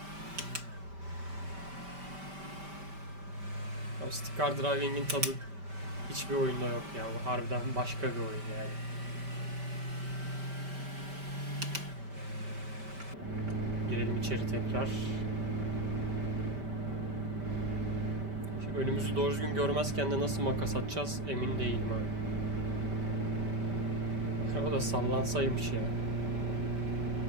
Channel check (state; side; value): late; left; 5.1 ms